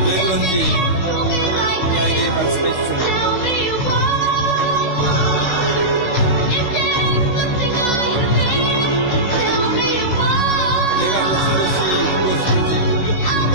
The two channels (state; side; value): late; right; 16 ms